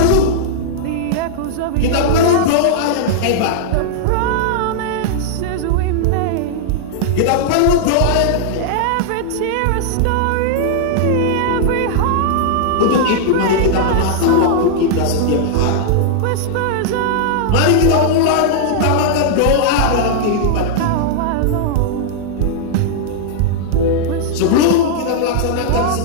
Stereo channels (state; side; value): different; both; correlation -0.01